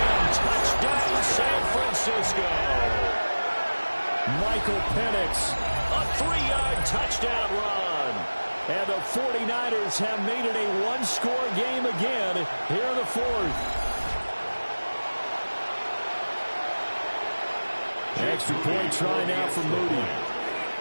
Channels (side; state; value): both; inverted; correlation -1.00